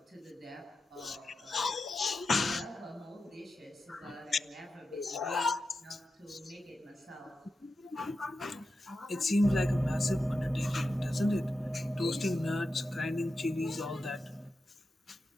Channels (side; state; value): both; normal; correlation 0.90